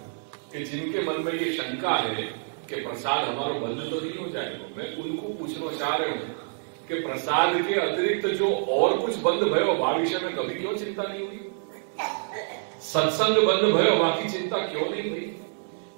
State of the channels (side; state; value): left; silent; digital silence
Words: कि जिनके मन में ये शंका है कि प्रसाद हमारा बंद तो नहीं हो जाएगा. मैं उनको पूछना चाह रहा हूं कि प्रसाद के अतिरिक्त जो और कुछ बंद भयो भविष्य में कभी क्यों चिंता नहीं हुई? सत्संग बंद भयो बाकी चिंता क्यों नहीं हुई?